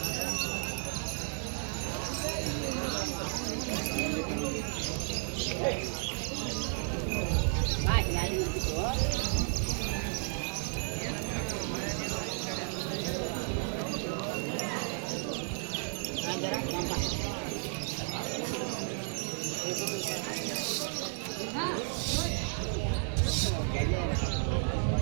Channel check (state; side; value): silent; left; 56 dB below the other